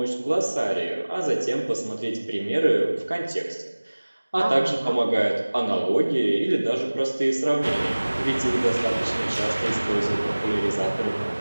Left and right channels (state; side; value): inverted; both; correlation -1.00